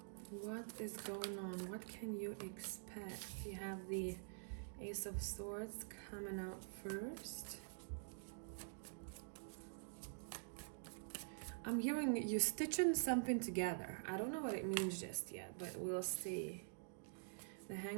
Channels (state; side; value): silent; left; digital silence